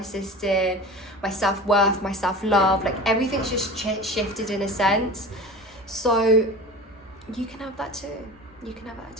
system, my self-worth, my self-love, like everything's just shifted in a sense. So you can have that too. You can have that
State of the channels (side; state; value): both; normal; correlation 0.35